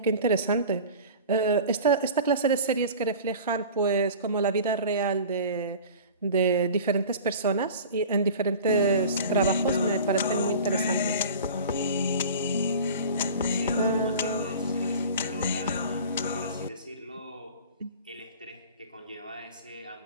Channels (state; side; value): inverted; both; correlation -0.39